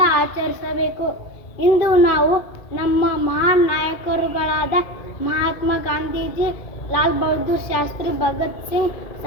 ಆಚರಿಸಬೇಕು. ಇಂದು ನಾವು ನಮ್ಮ ಮಹಾನ್ ನಾಯಕರುಗಳಾದ ಮಹಾತ್ಮ ಗಾಂಧೀಜಿ, ಲಾಲ್ ಬಹದ್ದೂರ್ ಶಾಸ್ತ್ರಿ, ಭಗತ್ ಸಿಂಗ್,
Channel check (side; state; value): right; late; 2.4 ms